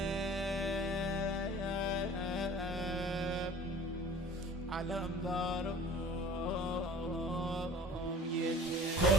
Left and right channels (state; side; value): normal; both; correlation 0.46